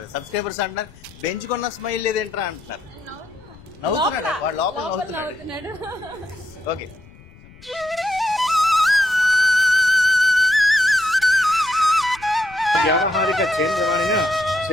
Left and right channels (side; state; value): left; noise; rumble, 23 dB below the sound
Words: సబ్స్క్రైబర్స్ అంటున్నారు. బెంచుకున్న స్మైల్ లేదేంట్రా అంటున్నారు. నవ్వుతున్నాడు వాడు, లోపల నవ్వుతున్నాడు. ఓకే. వ్యావహారిక చేంద్రవాణిన